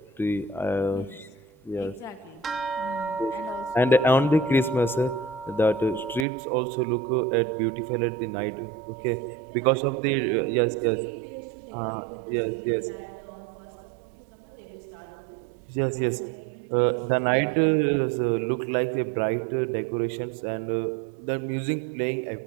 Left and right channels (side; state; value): left; drops out; at 6.2 s